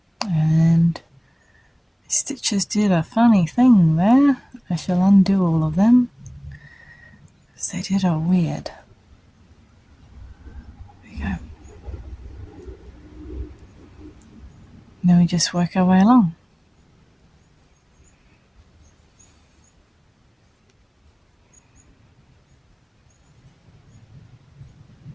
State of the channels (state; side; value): identical; both; correlation 1.00